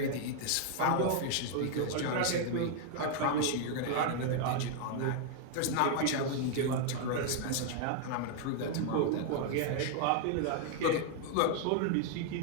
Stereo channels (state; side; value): different; both; correlation 0.00